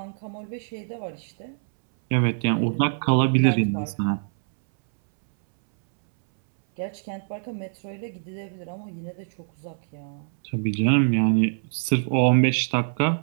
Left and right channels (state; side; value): silent; left; 62 dB below the other